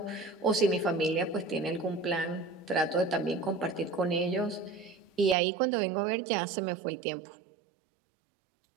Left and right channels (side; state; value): left; drops out; at 5.4 s